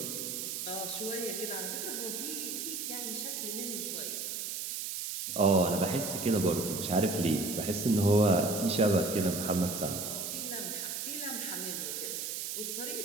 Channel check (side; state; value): right; noise; hiss, 4 dB below the sound